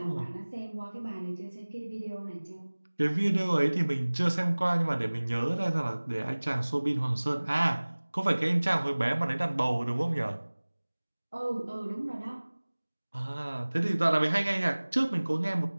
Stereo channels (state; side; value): inverted; both; correlation -1.00